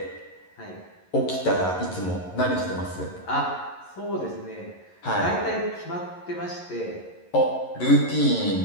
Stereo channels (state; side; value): late; right; 11 ms